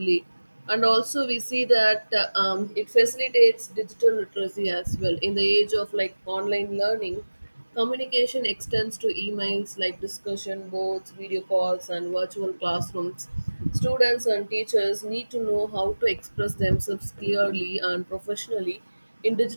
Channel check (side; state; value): both; inverted; correlation -1.00